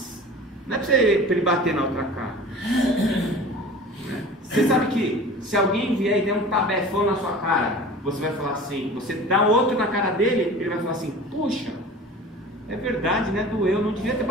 Não é para ele bater na outra cara. Você sabe que se alguém vier e der um tabefão na sua cara, você vai falar assim, você dá outro na cara dele, ele vai falar assim, puxa, é verdade, né? Doeu, não devia ter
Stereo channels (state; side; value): normal; both; correlation 0.40